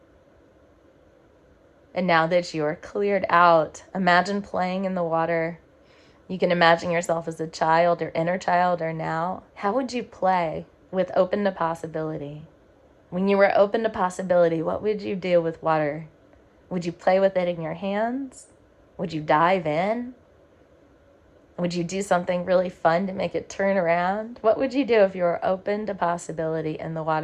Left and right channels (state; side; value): identical; both; correlation 1.00